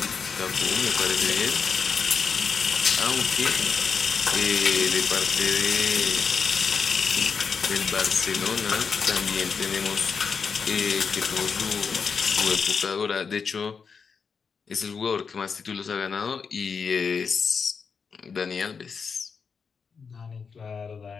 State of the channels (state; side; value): quieter; right; 5.8 dB